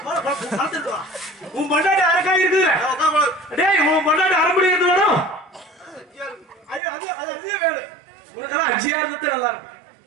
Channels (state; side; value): drops out; left; at 6.8 s